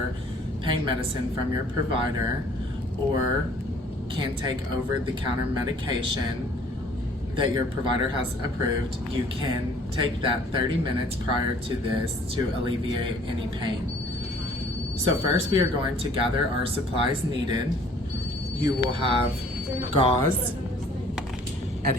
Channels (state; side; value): normal; both; correlation 0.56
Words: pain medicine from your provider or can take over-the-counter medication that your provider has approved, you can take that 30 minutes prior to this to alleviate any pain. So first we are going to gather our supplies needed. You will have gauze,